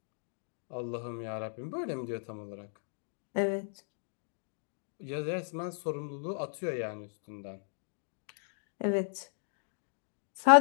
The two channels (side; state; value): right; silent; digital silence